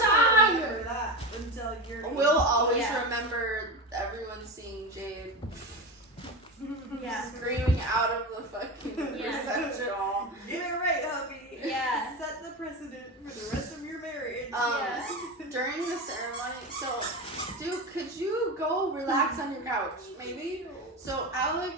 won't remember that until you're... We'll always Yeah. remember everyone seeing Jade Yeah. screaming out of the fucking Yeah. reception hall. Get it right, hubby. Yeah. Set the precedent for the rest of your marriage. Yeah. During the ceremony, so, dude, could you go relax on your couch, maybe? So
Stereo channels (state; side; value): normal; both; correlation 0.22